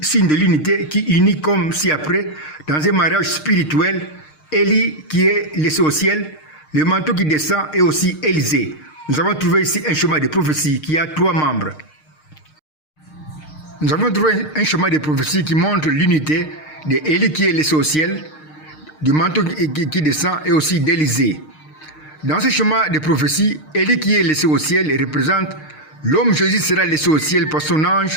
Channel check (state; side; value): late; right; 6.5 ms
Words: de l'unité qui unit comme ci-après dans un mariage spirituel, Élie qui est laissé au ciel, le manteau qui descend et aussi Élisée. Nous avons trouvé ici un chemin de prophétie qui a 3 membres. Nous avons trouvé un chemin de prophétie qui montre l'unité d'Élie qui est laissé au ciel, du manteau qui descend et aussi d'Élisée. Dans ce chemin de prophétie, Élie qui est laissé au ciel représente l'homme Jésus sera laissé au ciel par son